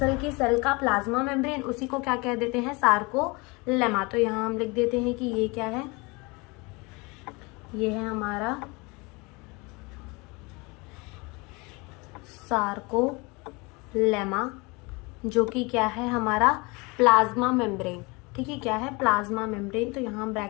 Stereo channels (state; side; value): quieter; right; 26.8 dB